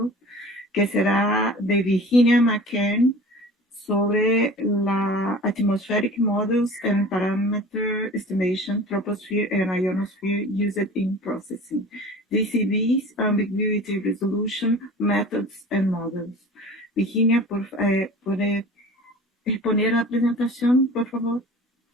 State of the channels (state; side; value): normal; both; correlation 0.40